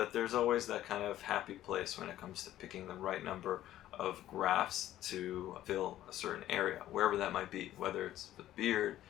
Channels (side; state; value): right; quieter; 13.3 dB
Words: there's always that kind of happy place when it comes to picking the right number of grafts to fill a certain area, wherever that might be, whether it's the beard,